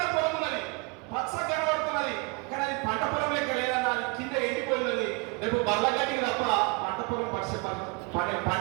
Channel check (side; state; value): left; quieter; 29.3 dB